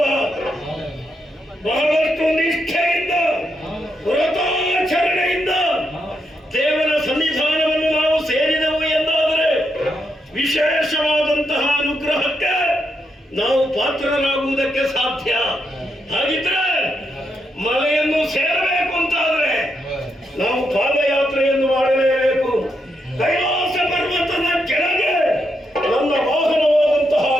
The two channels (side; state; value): both; normal; correlation 0.81